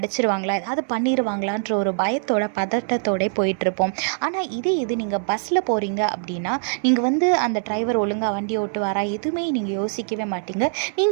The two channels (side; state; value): left; silent; 61 dB below the other